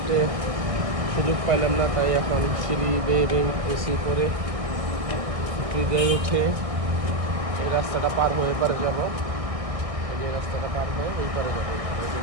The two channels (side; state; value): left; late; 1.6 ms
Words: সুযোগ পাইলাম না, তাই এখন সিঁড়ি বেয়ে এসি করে সিঁড়িতে উঠে এই রাস্তাটা পার হয়ে পারে যাব। এই রাস্তাটা পার হয়ে এই পারে যাবো